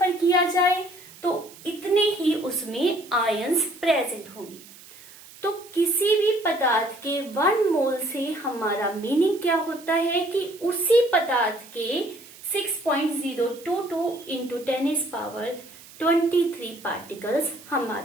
किया जाए तो इतने ही उसमें आयंस प्रेजेंट होंगे। तो किसी भी पदार्थ के 1 मोल से हमारा मीनिंग क्या होता है कि उसी पदार्थ के 6.022 इंटू 10⁻23 पार्टिकल्स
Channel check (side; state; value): right; noise; hiss, 20 dB below the sound